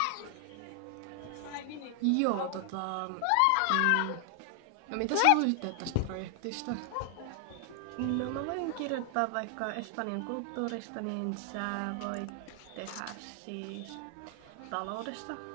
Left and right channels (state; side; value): different; both; correlation 0.00